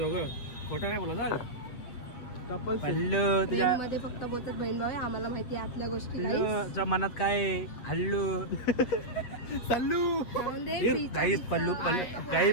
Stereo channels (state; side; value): late; right; 8.3 ms